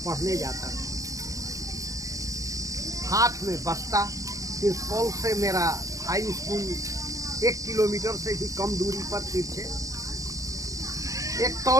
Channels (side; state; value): left; late; 0.16 ms